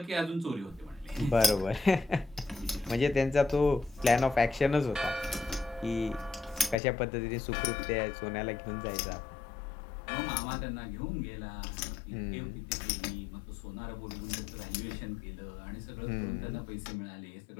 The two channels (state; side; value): drops out; right; at 6.8 s